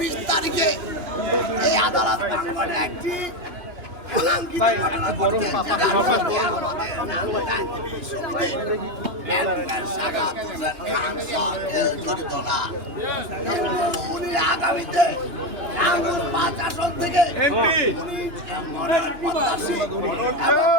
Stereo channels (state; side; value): late; left; 2.9 ms